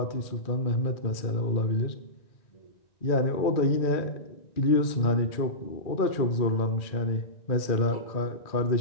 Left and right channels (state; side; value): late; right; 2.4 ms